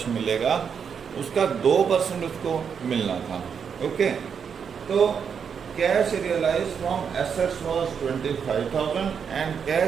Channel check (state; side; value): quieter; left; 6.9 dB